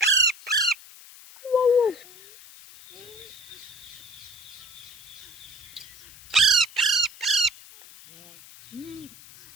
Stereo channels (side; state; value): left; noise; hiss, 20 dB below the sound